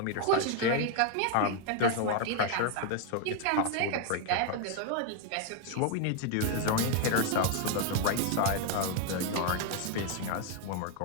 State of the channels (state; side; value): different; both; correlation 0.01